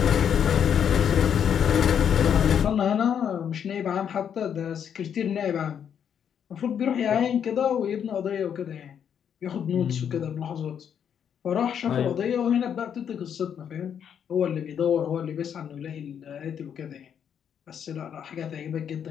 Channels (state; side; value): quieter; right; 8.3 dB